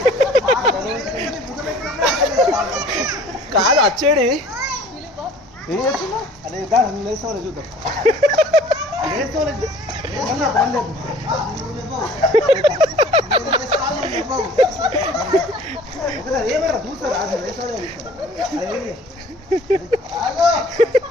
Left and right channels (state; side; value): normal; both; correlation 0.50